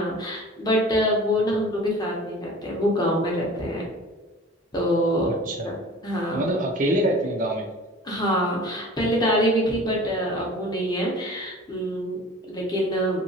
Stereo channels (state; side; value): normal; both; correlation 0.43